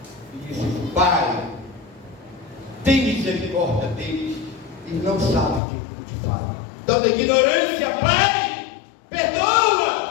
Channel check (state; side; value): drops out; right; at 5.6 s